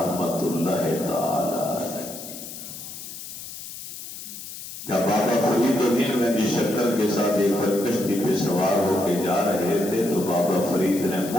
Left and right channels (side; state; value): left; noise; hiss, 11 dB below the sound